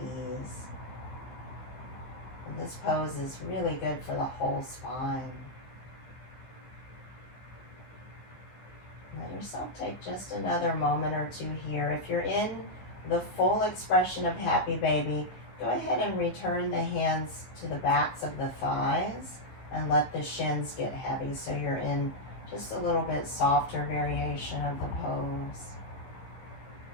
And this pose is really good for the whole spine. Let yourself take just another moment or two here. If you're in the full expression of happy baby, go ahead and return the hands to the backs of the thighs and let the shins get heavy so you're in just a little bit softer variation of the pose.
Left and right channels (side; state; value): right; late; 15 ms